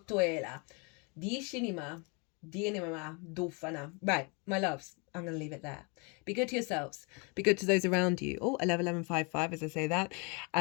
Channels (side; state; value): right; quieter; 32.5 dB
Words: Right, my loves, I'm going to leave it there. Be good to yourselves. Be good to those around you. Oh, 111155 as I say that.